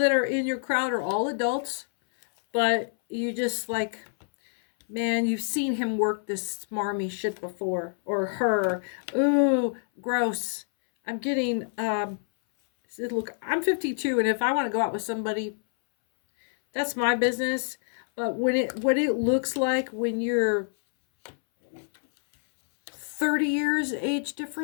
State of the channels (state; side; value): silent; right; 60 dB below the other